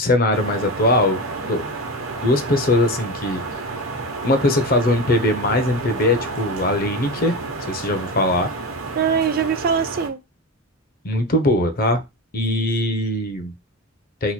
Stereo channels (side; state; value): both; normal; correlation 0.22